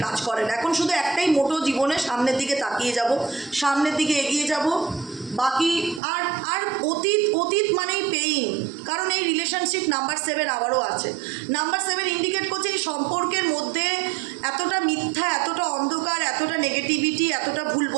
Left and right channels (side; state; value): left; drops out; at 6.0 s